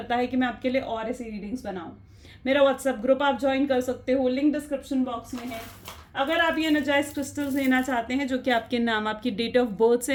है कि मैं आपके लिए और ऐसी रीडिंग्स बनाऊँ। मेरा व्हाट्सएप ग्रुप आप ज्वाइन कर सकते हो, लिंक डिस्क्रिप्शन बॉक्स में है। अगर आप ये एनर्जाइज क्रिस्टल्स लेना चाहते हैं जो कि आपके नाम, आपकी डेट ऑफ बर्थ से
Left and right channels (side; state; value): both; identical; correlation 1.00